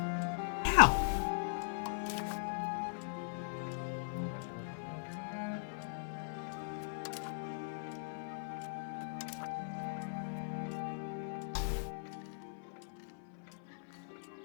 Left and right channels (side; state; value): right; silent; 51 dB below the other